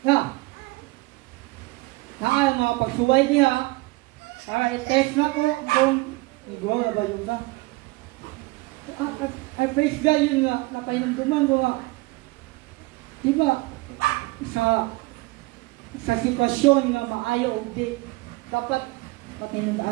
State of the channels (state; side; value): quieter; left; 22.7 dB